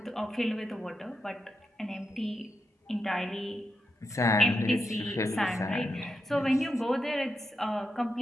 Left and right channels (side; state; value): both; normal; correlation 0.86